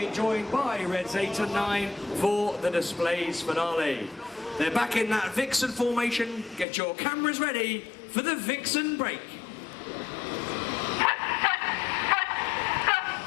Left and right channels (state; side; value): drops out; right; at 6.7 s